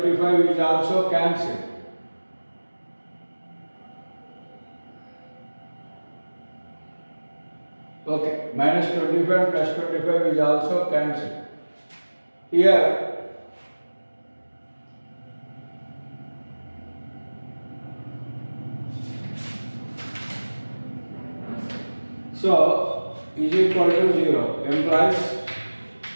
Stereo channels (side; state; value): both; inverted; correlation -1.00